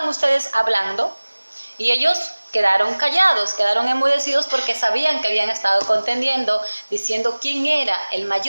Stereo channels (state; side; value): inverted; both; correlation -1.00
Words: ustedes hablando? Y ellos quedaron callados, quedaron enmudecidos porque sabían que habían estado contendiendo, diciendo quién era el